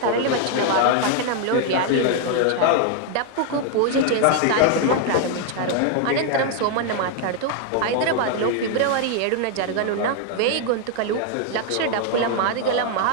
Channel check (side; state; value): both; different; correlation 0.00